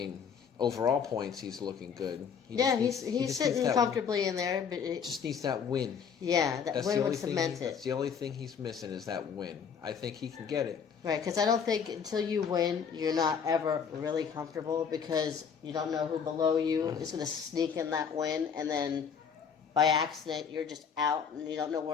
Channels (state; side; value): quieter; right; 6.8 dB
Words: overall points, he's looking good. He's sitting comfortably in there, but it just needs that win. Yeah, that win would cement it. That's the only thing he's missing is that win. I think he can get it. Right, because I don't think until you win, you're not ever really comfortable because you don't know who below you is going to sneak in that win, and then by accident you're just out and you don't know